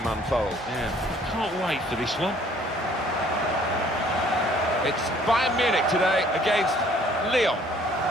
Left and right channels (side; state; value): both; normal; correlation 0.58